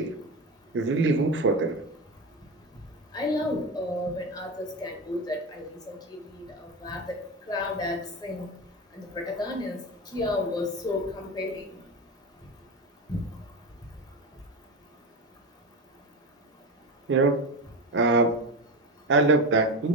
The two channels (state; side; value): normal; both; correlation 0.20